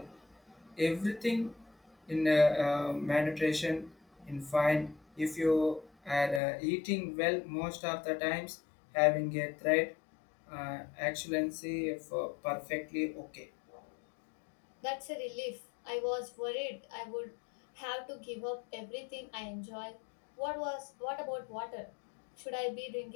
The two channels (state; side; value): drops out; right; at 6.4 s